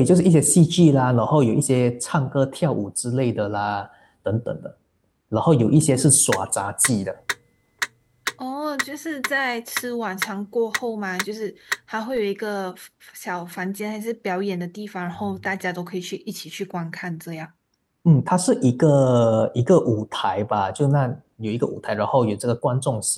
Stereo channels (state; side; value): identical; both; correlation 1.00